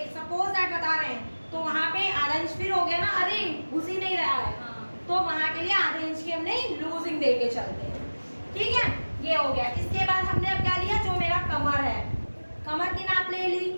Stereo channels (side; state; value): both; inverted; correlation -1.00